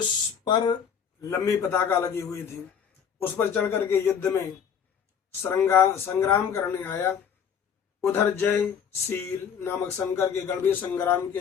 पर लंबी पताका लगी हुई थी, उस पर चढ़ करके युद्ध में संग्राम करने आया। उधर जयशील नामक शंकर के गण भी संग्राम के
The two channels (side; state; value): right; quieter; 7.5 dB